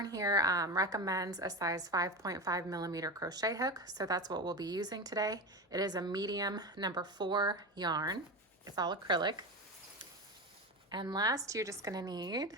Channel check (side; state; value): both; normal; correlation 0.22